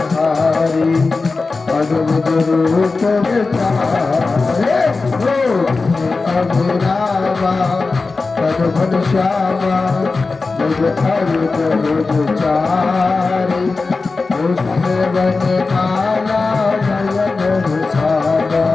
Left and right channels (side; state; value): right; quieter; 3.9 dB